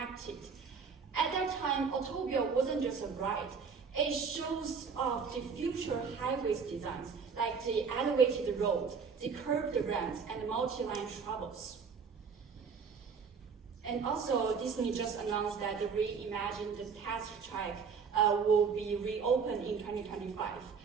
At that time, Autopia wasn't just a ride. It shows off the future highways designs, like the elevated road, the curved ramps, and the multi-line travels. And also, Disney just announced that the reimagined test track will be reopened in 2025.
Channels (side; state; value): left; quieter; 5.7 dB